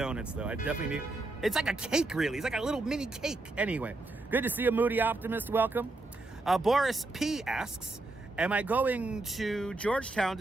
though. I definitely need. It's like a cake, really. It's like a little mini cake. Anyway, good to see you, Moody Optimist. Welcome. Boris P. asks, am I going to Georgetown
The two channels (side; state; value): left; quieter; 3.0 dB